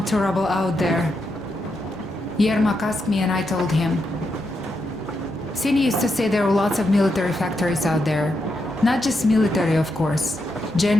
to rubble out there. Yermak asked me and I told him. Sini used to say there were lots of military factories out there. Not just military, of course.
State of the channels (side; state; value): both; normal; correlation 0.83